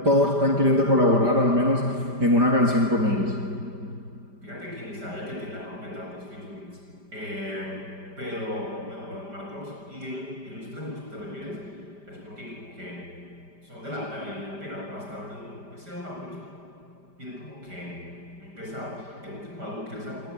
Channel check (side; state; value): left; late; 5.1 ms